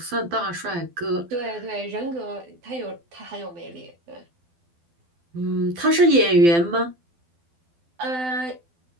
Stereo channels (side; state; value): left; late; 12 ms